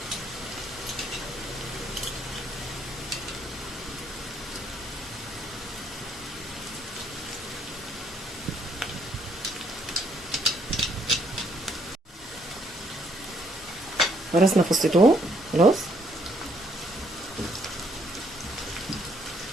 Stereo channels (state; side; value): normal; both; correlation 0.69